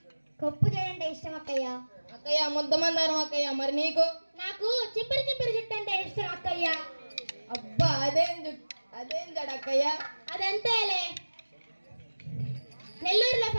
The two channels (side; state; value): both; inverted; correlation -1.00